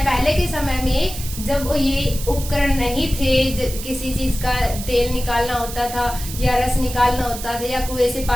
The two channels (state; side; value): noise; right; hiss, 10 dB below the sound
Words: पहले के समय में, जब ये उपकरण नहीं थे, किसी चीज का तेल निकालना होता था या रस निकालना होता था या कुएं से